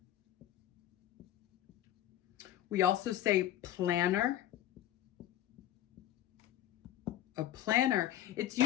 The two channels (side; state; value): right; quieter; 12.6 dB